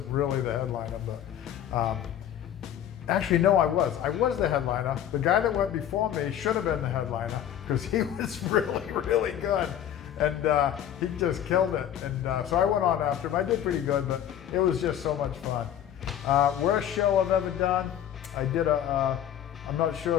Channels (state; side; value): quieter; right; 10.4 dB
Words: really the headliner, but actually, no, I was. I was the headliner. The guy that went before me should have been the headliner because he was really, really good. And he just killed it. And so I went on after him. I did pretty good, but it was just so much fun. Worst show I've ever done, I did I'm not sure